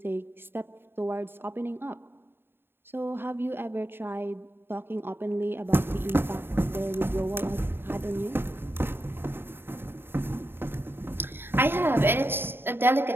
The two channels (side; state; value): left; late; 0.11 ms